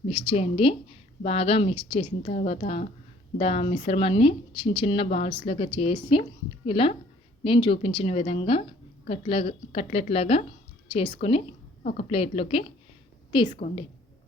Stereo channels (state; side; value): normal; both; correlation 0.58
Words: మిక్స్ చేయండి. బాగా మిక్స్ చేసిన తర్వాత మిశ్రమాన్ని చిన్న చిన్న బాల్స్ లాగా చేసి ఇలా నేను చూపించిన విధంగా కట్లెట్ లాగా చేసుకొని ఒక ప్లేట్లోకి తీసుకోండి.